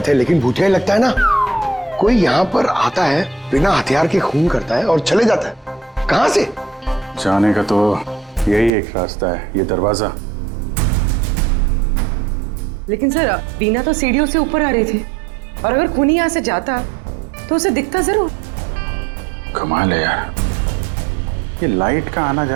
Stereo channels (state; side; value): drops out; left; at 8.7 s